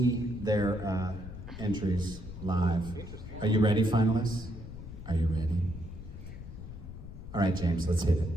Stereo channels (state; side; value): noise; left; rumble, 11 dB below the sound